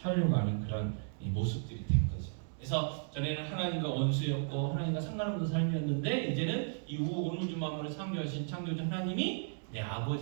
하는 그런 모습들이 된 거죠. 그래서 전에는 하나님과 원수였고 하나님과 상관없는 삶이었는데 이제는 이후 온 우주 만물을 창조하신 창조주 하나님이 내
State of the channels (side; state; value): left; silent; digital silence